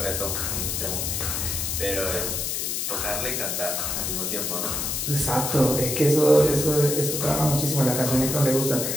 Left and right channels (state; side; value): noise; left; hiss, 1 dB below the sound